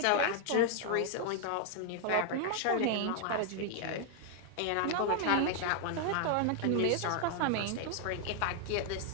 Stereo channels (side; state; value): both; different; correlation 0.00